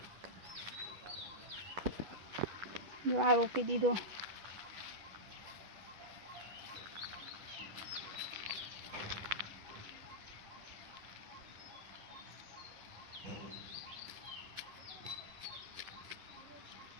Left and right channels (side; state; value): left; late; 10 ms